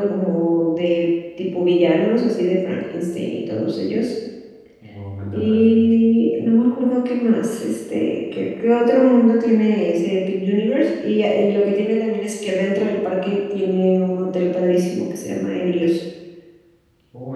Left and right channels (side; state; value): both; identical; correlation 1.00